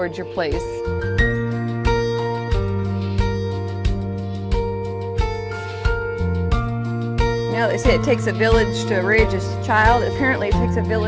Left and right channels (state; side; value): identical; both; correlation 1.00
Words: your place. You know, they say it takes a village to raise a child. Apparently it takes a